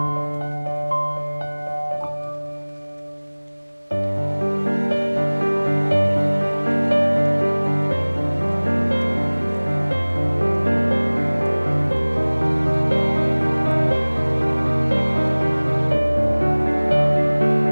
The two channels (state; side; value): inverted; both; correlation -1.00